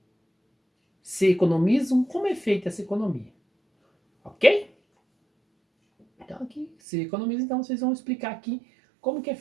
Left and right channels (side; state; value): left; drops out; at 6.7 s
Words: Se economizam, como é feita essa economia? Ok? Então aqui, se economiza, então vocês vão explicar aqui como que é